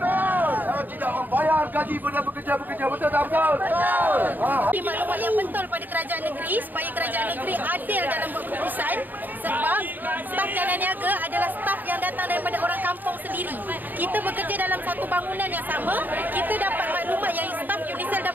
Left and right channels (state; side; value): late; left; 0.088 ms